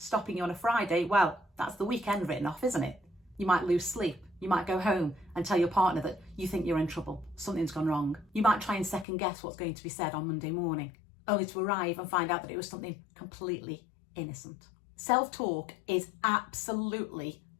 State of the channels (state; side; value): drops out; right; at 9.1 s